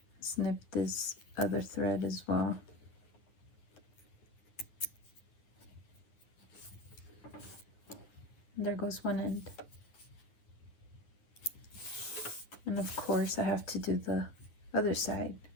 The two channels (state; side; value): late; right; 9.4 ms